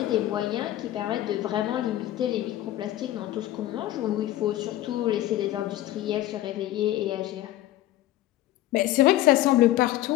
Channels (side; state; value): right; quieter; 14.5 dB